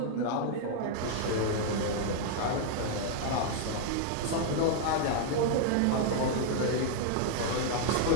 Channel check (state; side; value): different; both; correlation 0.00